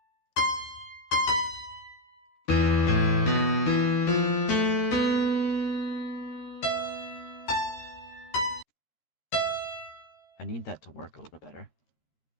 I need that to work a little better.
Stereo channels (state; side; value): late; right; 13 ms